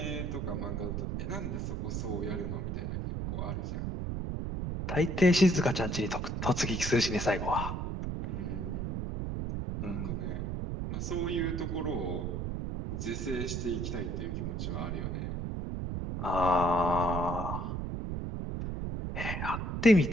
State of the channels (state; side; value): noise; right; rumble, 2 dB below the sound